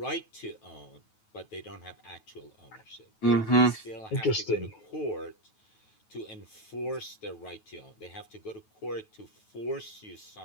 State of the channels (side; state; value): right; late; 9.3 ms